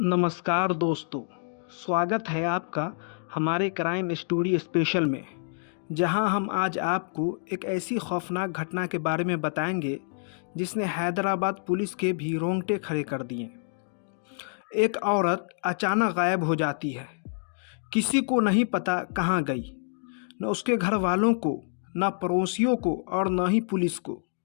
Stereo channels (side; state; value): right; silent; digital silence